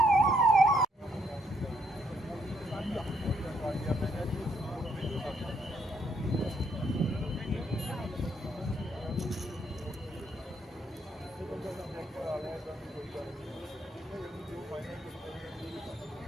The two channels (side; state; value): both; normal; correlation 0.72